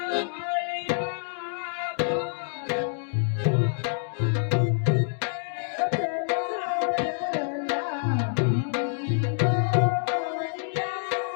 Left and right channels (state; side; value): silent; right; digital silence